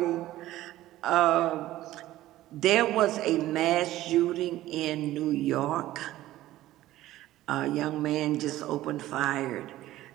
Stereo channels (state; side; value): quieter; left; 15.2 dB